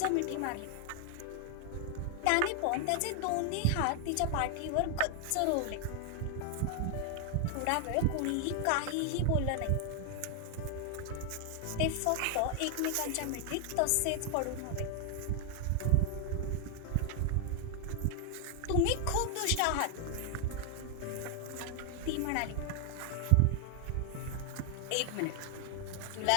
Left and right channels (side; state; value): both; different; correlation 0.00